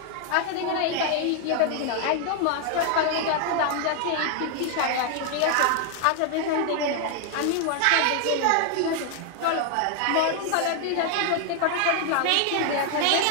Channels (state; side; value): different; both; correlation 0.00